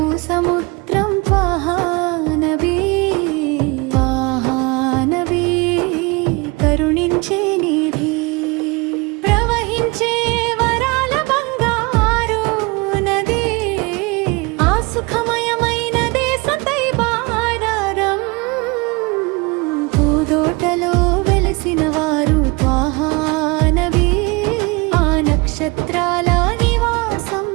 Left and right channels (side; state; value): left; quieter; 26.5 dB